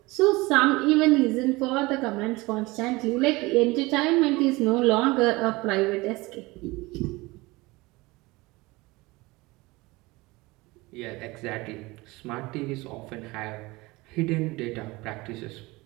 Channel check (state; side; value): quieter; left; 22.2 dB